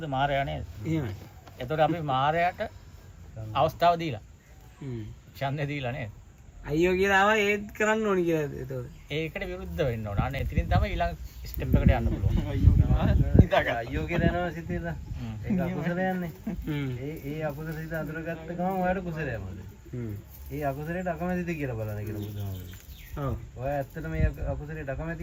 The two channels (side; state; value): both; identical; correlation 1.00